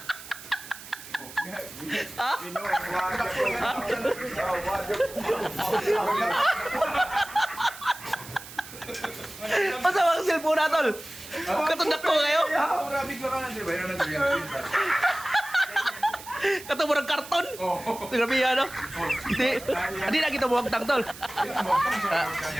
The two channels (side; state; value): right; noise; hiss, 15 dB below the sound